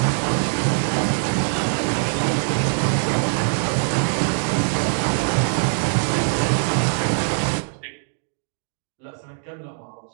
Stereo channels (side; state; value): left; silent; digital silence